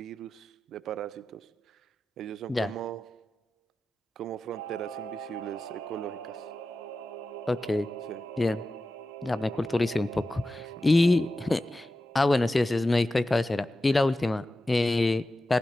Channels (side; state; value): both; normal; correlation 0.93